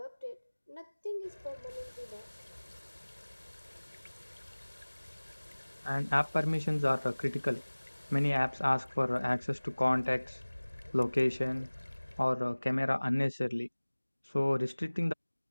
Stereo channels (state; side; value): inverted; both; correlation -1.00